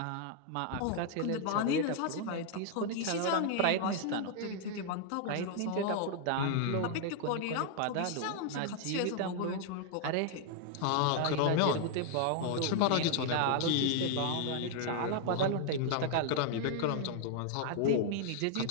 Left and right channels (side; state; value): both; different; correlation 0.00